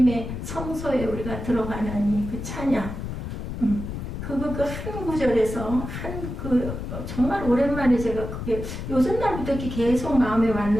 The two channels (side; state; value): left; noise; rumble, 6 dB below the sound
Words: 성소에 우리가 들어가는 그 찬양 그거 그 한 구절에서 정말 오랜만에 제가 그게 요즘 날부터 이렇게 계속 마음에